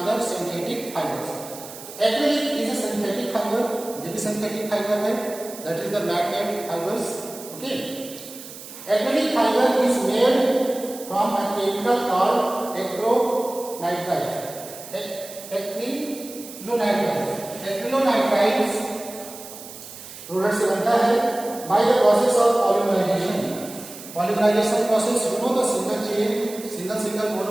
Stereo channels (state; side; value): noise; right; hiss, 14 dB below the sound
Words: synthetic fibres. Acrylic is a synthetic fibre, ये भी सिंथेटिक फाइबर है, that is the magnet fibres. Okay, acrylic fiber is made from a chemical called acrylonitrile. Acrylonitrile product से बनता है by the process of polymerization. Polymerization process, you know the single chain, single